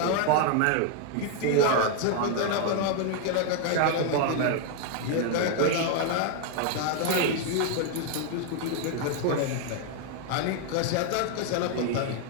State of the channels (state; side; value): different; both; correlation 0.00